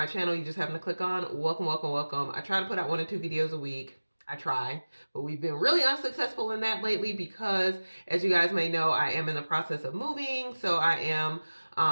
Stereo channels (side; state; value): both; inverted; correlation -1.00